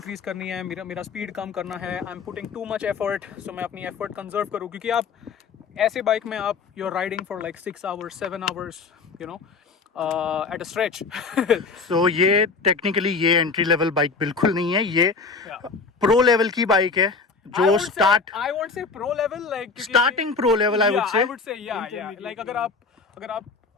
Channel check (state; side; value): quieter; right; 4.6 dB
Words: करनी है, मेरा स्पीड कम करना है, I am putting too much effort, so मैं अपनी एफर्ट कंजर्व करूँ क्योंकि आप ऐसे बाइक में आप you are riding for like 6 hours 7 hours at a stretch. So ये टेक्निकली ये एंट्री लेवल बाइक बिल्कुल नहीं है, ये प्रो लेवल की बाइक है जो I won't say pro level like starting pro level I yeah, would say. yeah like अगर आप